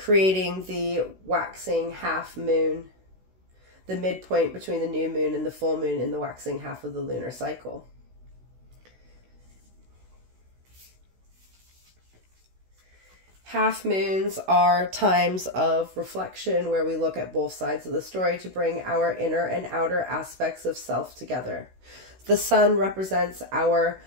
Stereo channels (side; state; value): left; late; 16 ms